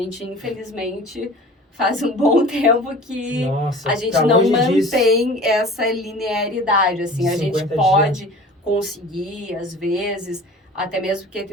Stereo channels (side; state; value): both; normal; correlation 0.41